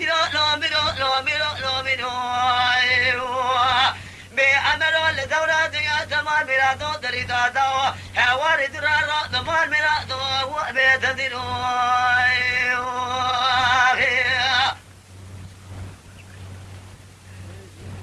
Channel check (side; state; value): both; identical; correlation 1.00